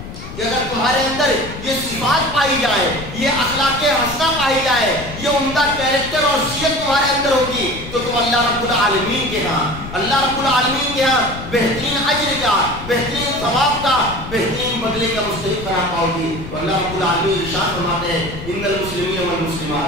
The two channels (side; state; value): left; noise; rumble, 11 dB below the sound